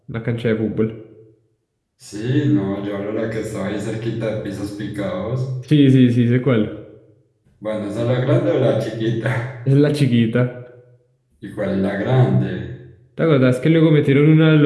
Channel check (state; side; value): identical; both; correlation 1.00